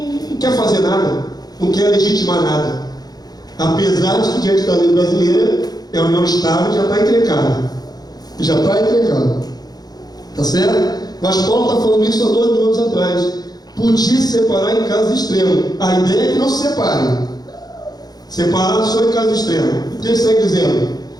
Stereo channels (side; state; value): right; late; 0.19 ms